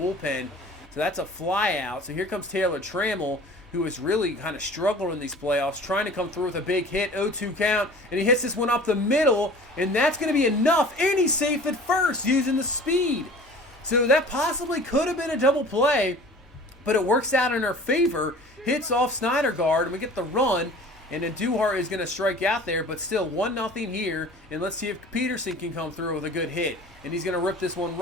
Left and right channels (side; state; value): both; normal; correlation 0.44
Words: So that's a fly out. So here comes Taylor Trammell, who is really kind of struggling in these playoffs, trying to come through with a big hit, 0-2 count, and he hits this one up the middle, and that's going to be enough, and he's safe at first using the speed. So that possibly could have been a double play, but it works out in our favor, hits off Snydergaard, and we get the run, and then Duhart is going to strike out there, but still 1-0 here, and let's see if Peterson can come through with a good hit. And he's going to rip this one